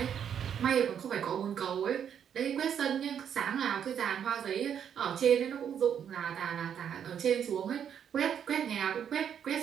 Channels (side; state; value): left; quieter; 8.6 dB